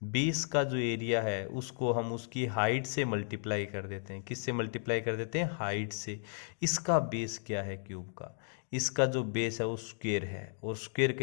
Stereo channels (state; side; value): silent; right; digital silence